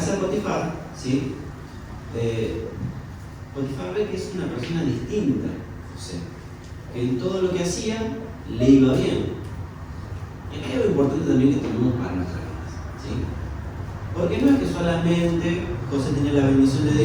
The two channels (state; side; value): identical; both; correlation 1.00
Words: de Potifar, ¿sí? Potifar ve que es una persona distinta a José, que en todo lo que hacía le iba bien. Y acá hay algo importante también que tenemos para nuestras vidas, ¿sí? Porque no es que solamente José tenía la bendición